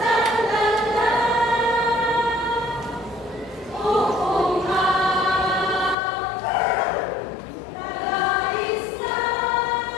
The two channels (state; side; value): drops out; right; at 6.0 s